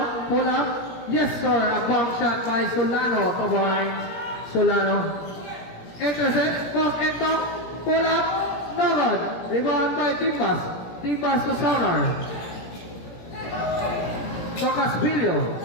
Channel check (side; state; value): right; late; 17 ms